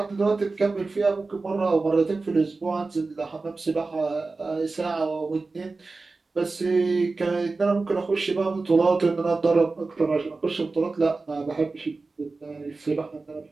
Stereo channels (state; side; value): quieter; left; 3.7 dB